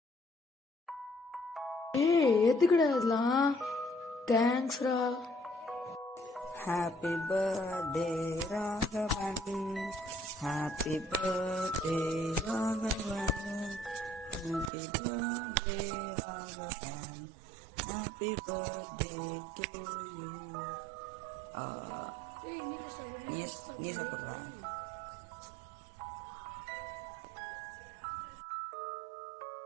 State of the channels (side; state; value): left; drops out; at 14.7 s